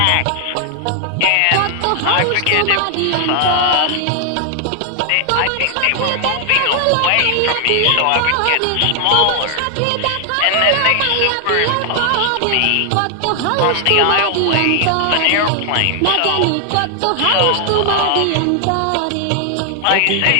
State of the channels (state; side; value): different; both; correlation 0.00